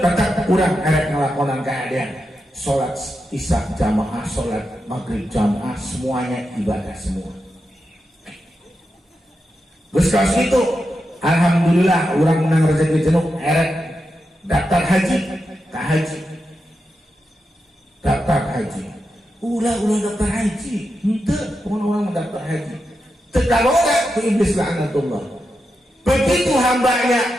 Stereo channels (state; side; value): normal; both; correlation 0.88